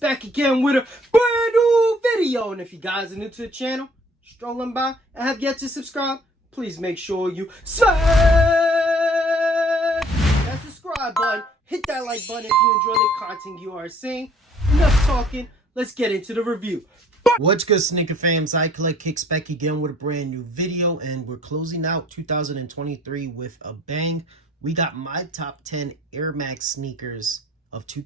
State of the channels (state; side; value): normal; both; correlation 0.57